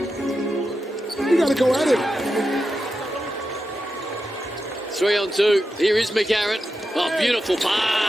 You got to go at it. 3-on-2. Here is McCarron. Oh, beautiful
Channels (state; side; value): normal; both; correlation 0.89